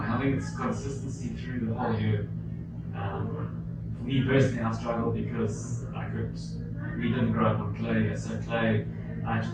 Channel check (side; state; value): both; identical; correlation 1.00